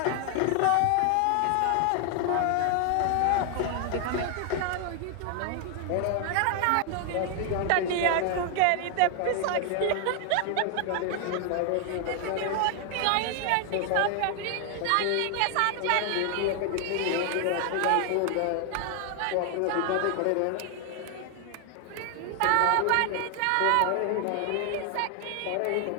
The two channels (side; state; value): both; different; correlation 0.00